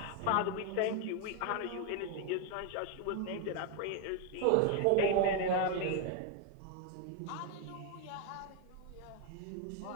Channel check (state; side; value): different; both; correlation 0.01